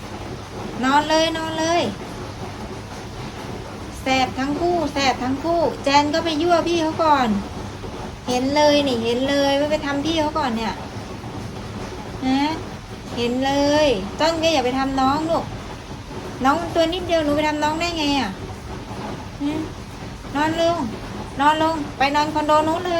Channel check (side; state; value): both; identical; correlation 1.00